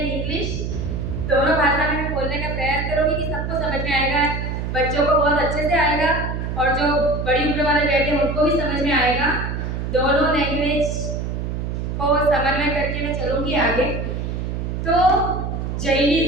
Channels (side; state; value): right; noise; hum, 3 dB below the sound